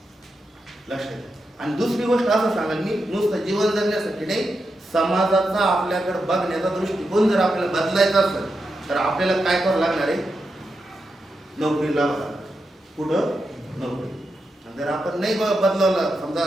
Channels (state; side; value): normal; both; correlation 0.87